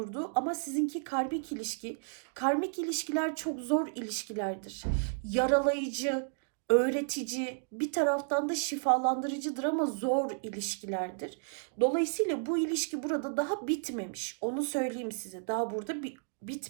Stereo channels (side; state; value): left; silent; digital silence